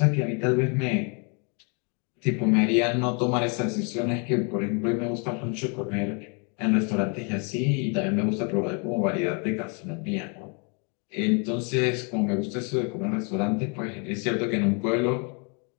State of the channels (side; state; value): right; quieter; 35.9 dB